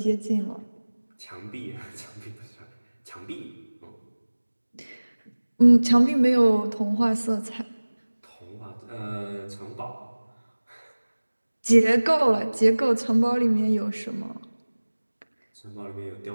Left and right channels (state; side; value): inverted; both; correlation -1.00